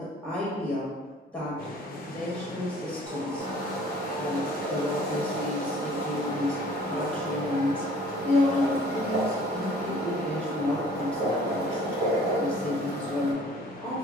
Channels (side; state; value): both; normal; correlation 0.52